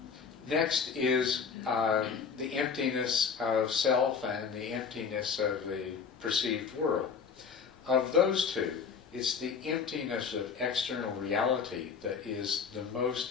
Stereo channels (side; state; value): right; quieter; 6.2 dB